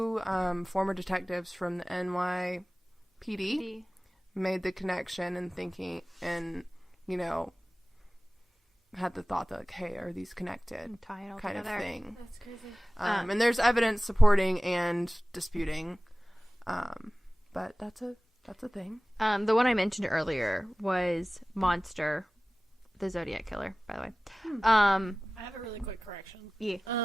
former detectives from the NYPD made the connection and thinking, and had the thought that like, hey, are these connected, Tie it all kind together. of thing. That's crazy. And there's evidence supporting and disputing, but that's a thing. The one I mentioned earlier was Monster, the Zodiac Killer, by the way. I have a really quick correction.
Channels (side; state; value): both; normal; correlation 0.98